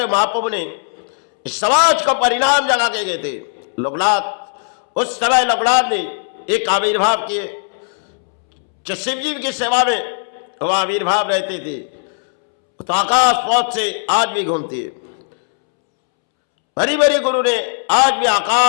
महाप्रभु ने इस समाज को परिणाम जगा के गए थे। लोकनाथ उस समय लोकनाथ ने एक आविर्भाव किए, जो शिव जी की सेवा में वो आविर्भाव रहते थे, तो आकाश पौध से आज भी घूमती है। बड़ी बड़ी गुरु ने आज भी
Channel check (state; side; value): silent; right; 68 dB below the other